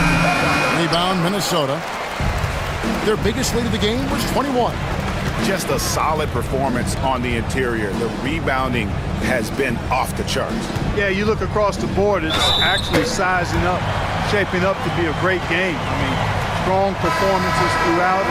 Rebound, Minnesota. Their biggest lead of the game was 21. Just a solid performance on the interior. The rebounding has been off the charts. Yeah, you look across the board, it's actually sizing up, shaping up to be a great game. I mean, strong performances throughout,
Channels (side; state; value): both; identical; correlation 1.00